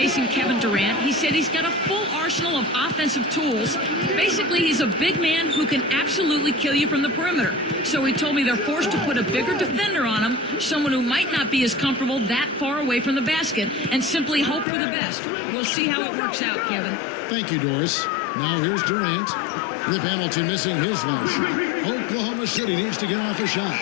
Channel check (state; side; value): drops out; right; at 14.7 s